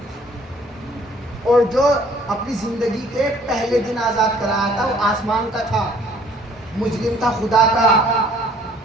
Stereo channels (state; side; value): normal; both; correlation 0.57